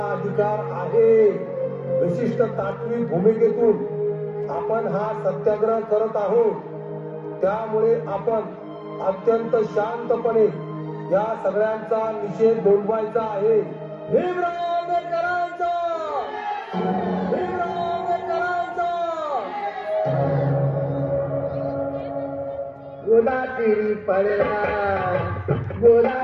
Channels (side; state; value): both; identical; correlation 1.00